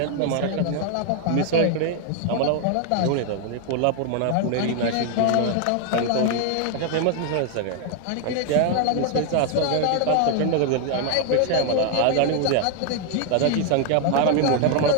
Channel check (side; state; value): both; different; correlation 0.00